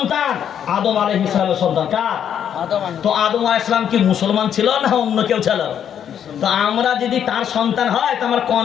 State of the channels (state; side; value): quieter; right; 9.1 dB